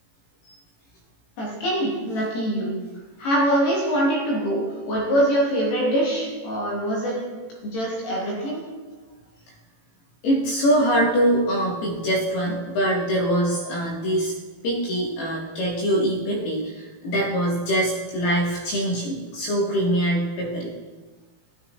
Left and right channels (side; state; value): right; late; 18 ms